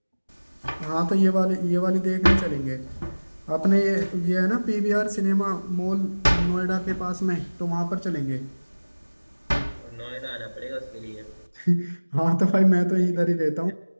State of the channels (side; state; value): both; inverted; correlation -1.00